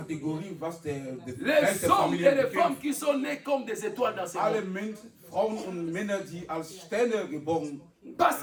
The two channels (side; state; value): both; identical; correlation 1.00